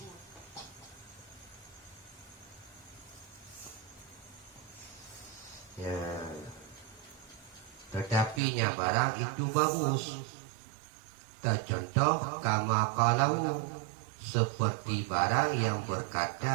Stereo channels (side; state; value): left; drops out; at 8.4 s